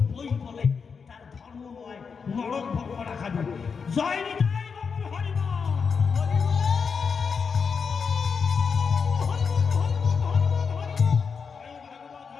বই বলে তার ধর্ম নয়, নরক ভোগ করা খাবে। জয় নিতাই বাবুর হরিবল।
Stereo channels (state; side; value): quieter; right; 5.7 dB